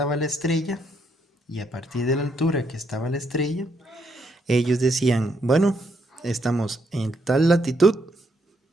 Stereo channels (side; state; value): both; normal; correlation 0.75